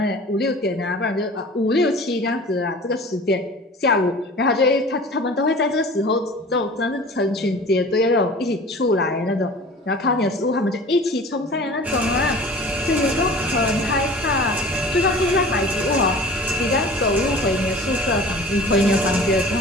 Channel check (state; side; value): normal; both; correlation 0.42